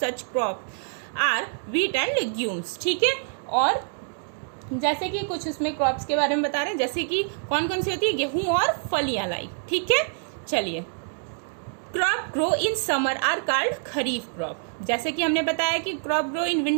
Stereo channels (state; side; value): silent; left; digital silence